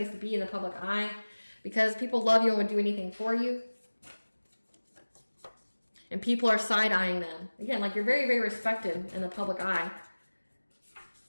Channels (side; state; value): both; inverted; correlation -1.00